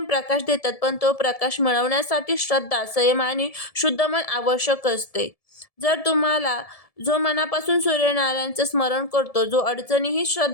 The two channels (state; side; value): late; right; 1.7 ms